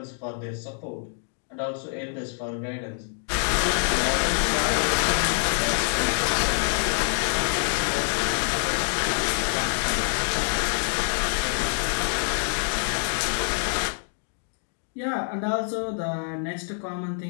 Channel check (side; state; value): right; silent; 61 dB below the other